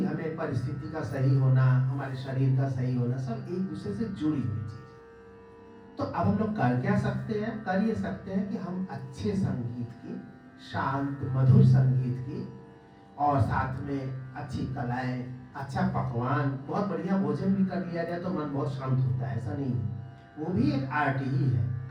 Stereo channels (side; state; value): both; identical; correlation 1.00